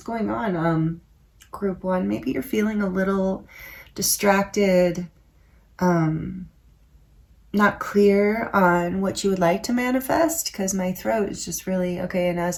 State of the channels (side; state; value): both; identical; correlation 1.00